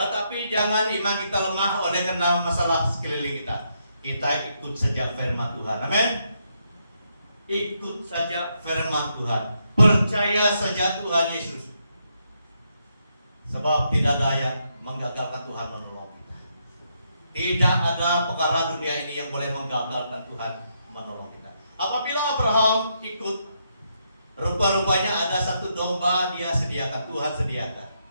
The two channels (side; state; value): both; inverted; correlation -0.79